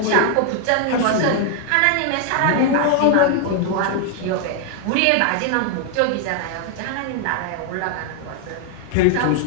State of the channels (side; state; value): both; different; correlation 0.00